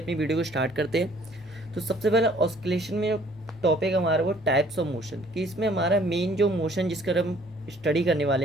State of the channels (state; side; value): normal; both; correlation 0.58